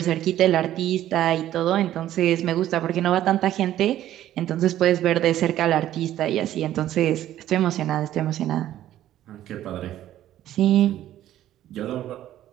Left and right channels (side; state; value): left; quieter; 12.7 dB